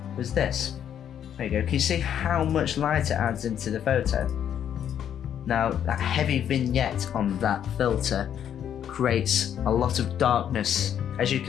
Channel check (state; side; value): quieter; right; 9.5 dB